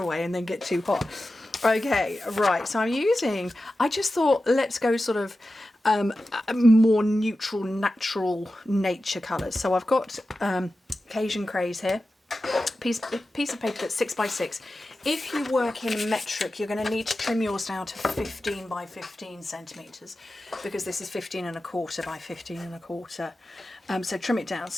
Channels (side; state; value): both; normal; correlation 0.93